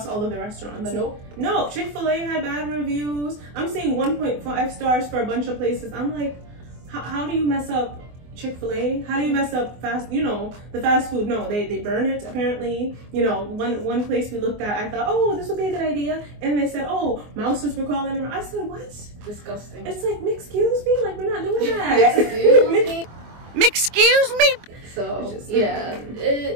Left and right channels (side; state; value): left; late; 24 ms